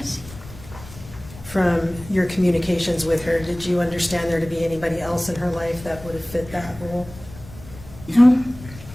From your communications with her, did you understand there to be anybody else in her life that would have fit that role? No.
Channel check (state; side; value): noise; left; rumble, 17 dB below the sound